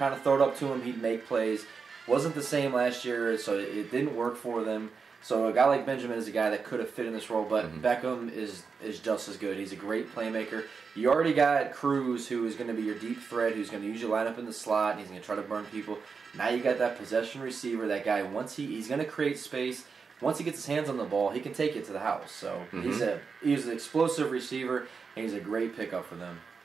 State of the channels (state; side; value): quieter; left; 5.3 dB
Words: of throw it up to him, he'd make plays. Wasn't the same last year, so it didn't work for them. So a guy like Benjamin is a guy that could have fit in this role, but Beckham is just as good. He's a great playmaker. You already got Cruz, who is going to be your deep threat, who's going to usually line up in the slot, and he's going to try to burn people. Now you got that possession receiver, that guy, once he's going to create space. Once he gets his hands on the ball, he can take it to the house. So he's an explosive receiver, and he's a great pickup for them.